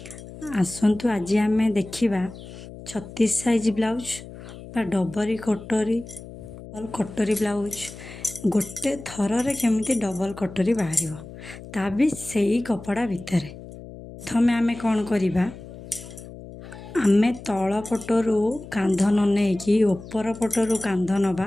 आसंतु आज आमे देखिबा 36 साइज ब्लाउज बा डबरी कटोरी ब्लाउज गोटे थर रे केमिति डबल कटोरी बाहरिबो ता भी सेही कपड़ा भितरे। प्रथमे आमे कोन करिबा, आमे तल पटरू कांध न नेकी ऊपर पटरू कांध नबा,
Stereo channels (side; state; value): left; noise; hum, 15 dB below the sound